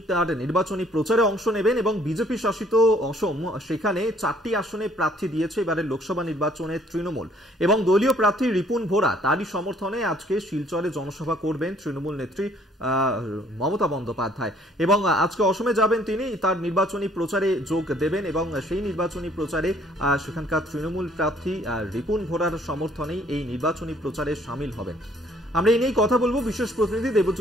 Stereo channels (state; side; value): normal; both; correlation 0.61